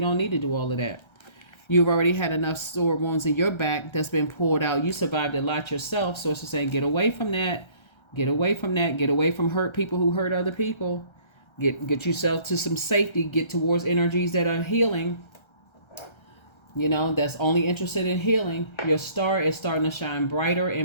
need to do all of that. You've already had enough sore wounds in your back that's been pulled out. You survived a lot yourself. Source is saying, get away from that. Get away from that. Get away from hurt people who hurt other people. Get yourself to some safety. Get towards energies that are healing. That's only interested in healing. Your star is starting to shine brighter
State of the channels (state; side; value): late; right; 1.3 ms